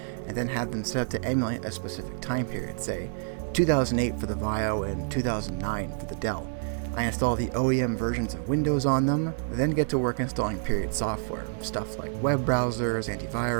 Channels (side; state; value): left; silent; 59 dB below the other